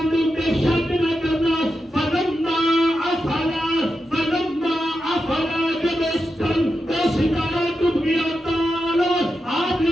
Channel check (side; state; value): both; normal; correlation 0.88